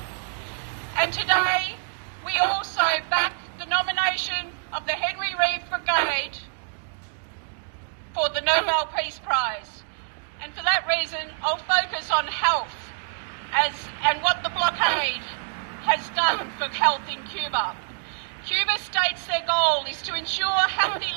And today we also back the nomination of the Henry Reeve Brigade for the Nobel Peace Prize. And for that reason, I'll focus on health and what the blockade has done for health in Cuba. Cuba states their goal is to ensure healthy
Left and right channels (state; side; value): silent; left; 61 dB below the other